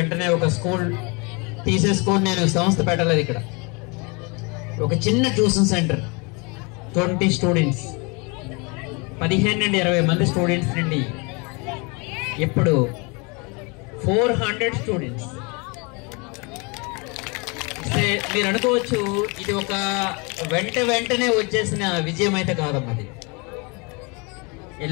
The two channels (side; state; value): right; quieter; 30.2 dB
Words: ఒక స్కూల్ తీసేసుకొని నేను సంస్థ పెట్టలేదు. ఇక్కడ ఒక చిన్న ట్యూషన్ సెంటర్, 20 స్టూడెంట్స్, 15 నుండి 20 మంది స్టూడెంట్స్ నుండి ఇప్పుడు 400 స్టూడెంట్స్. మీరు అనుకోవచ్చు ఇది ఒక వెంటనే వచ్చేసిన విజయం అయితే కాదమ్మా. అది a